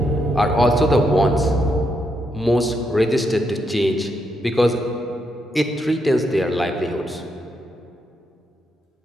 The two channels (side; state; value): both; normal; correlation 0.79